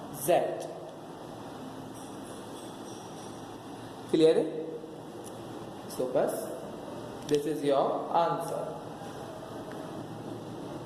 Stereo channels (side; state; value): both; identical; correlation 1.00